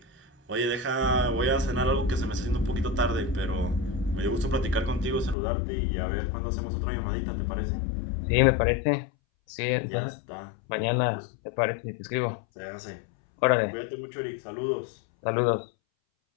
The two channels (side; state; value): right; drops out; at 5.4 s